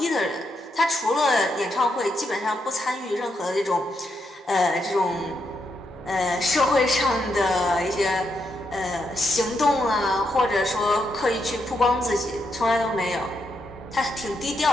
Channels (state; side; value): normal; both; correlation 0.81